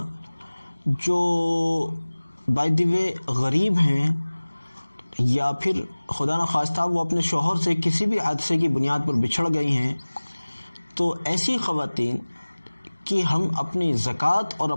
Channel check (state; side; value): inverted; both; correlation -1.00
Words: जो बाय द वे गरीब हैं या फिर खुदा न खास्ता वो अपने शौहर से किसी भी हादसे की बुनियाद पर बिछड़ गई हैं, तो ऐसी ख़वातीन कि हम अपनी ज़कात और